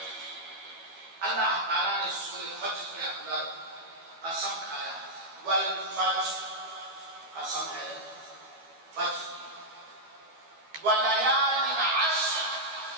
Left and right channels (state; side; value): late; left; 12 ms